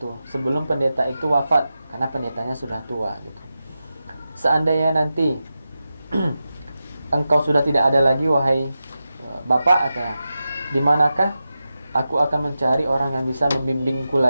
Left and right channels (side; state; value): both; inverted; correlation -0.91